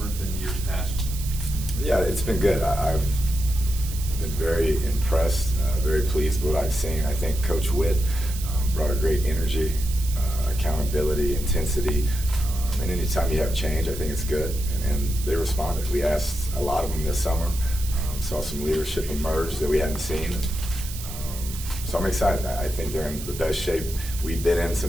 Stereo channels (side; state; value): right; noise; hiss, 11 dB below the sound